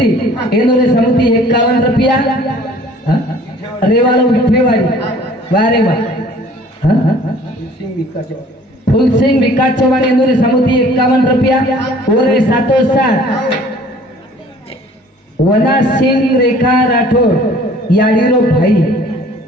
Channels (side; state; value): both; normal; correlation 0.53